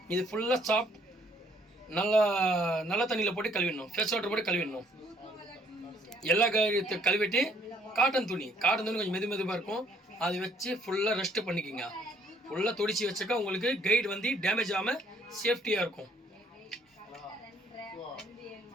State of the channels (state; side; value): normal; both; correlation 0.64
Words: இது ஃபுல்லாக சாஃப்ட் நல்ல தண்ணியில் போட்டு கழுவிடணும். ஃப்ரெஷ் வாட்டர் போட்டு கழுவிடணும். எல்லா கழுவிட்டு காட்டன் துணி கொஞ்சம் மெதுவாக இருக்கும், அதை வச்சு ஃபுல்லாக ரெஸ்ட்டு பண்ணிக்கோங்க. ஃபுல்லாக தொடிச்சு வச்சாக்கா உங்களுக்கு கைடு வந்து டேமேஜ் ஆகாமல் சேஃப்டியாக இருக்கும்.